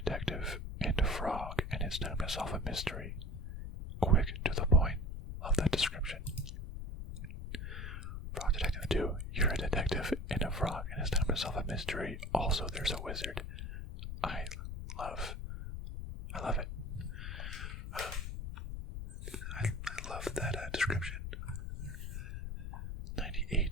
and a frog, and it's time to solve a mystery. Quick, to the point. Love that description. Frog Detective 2. You're a detective and a frog, and it's time to solve a mystery. Also, there's a wizard. I love it. I love that description.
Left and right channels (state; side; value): noise; left; rumble, 6 dB below the sound